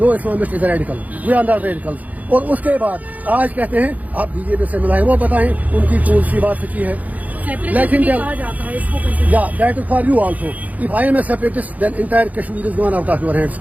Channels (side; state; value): left; late; 0.076 ms